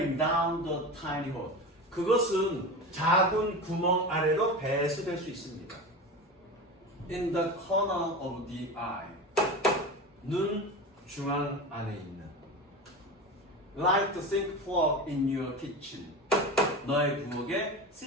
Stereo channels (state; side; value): normal; both; correlation 0.27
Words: down the tiny hole. 그것은 작은 구멍 아래로 배수될 수 있습니다. In the corner of the eye. 눈 중앙 안에 있는. Like the sink plug in your kitchen. 너의 부엌의